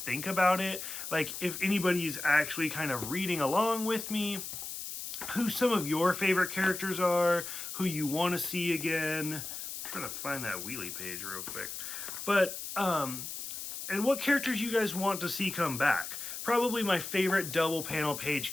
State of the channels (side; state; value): left; noise; hiss, 7 dB below the sound